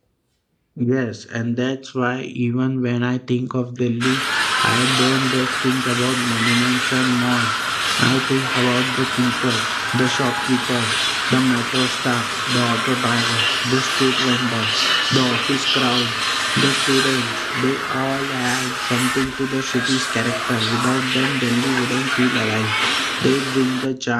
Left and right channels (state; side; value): identical; both; correlation 1.00